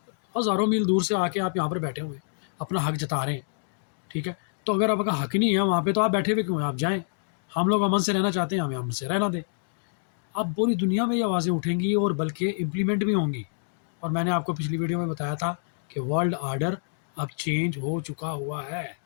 ہزاروں میل دور سے آ کے آپ یہاں پر بیٹھے ہوئے اپنا حق جتا رہے ہیں، ٹھیک ہے؟ تو اگر آپ کا حق نہیں ہے وہاں پہ تو آپ بیٹھے ہوئے کیوں ہیں؟ آپ جائیں، ہم لوگ امن سے رہنا چاہتے ہیں، ہمیں امن سے رہنا دیں۔ اب پوری دنیا میں یہ آوازیں اٹھیں گی اور بلکہ امپلیمنٹ بھی ہوں گی، اور میں نے آپ کو پچھلی ویڈیو میں بتایا تھا کہ ورلڈ آرڈر اب چینج ہو چکا ہوا ہے،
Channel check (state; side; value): silent; right; digital silence